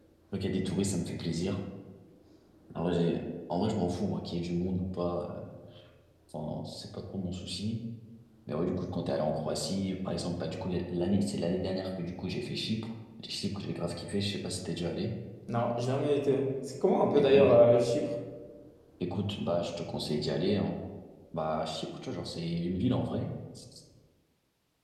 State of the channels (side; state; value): both; identical; correlation 1.00